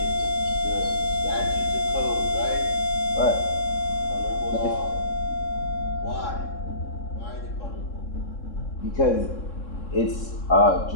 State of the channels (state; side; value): late; right; 3.7 ms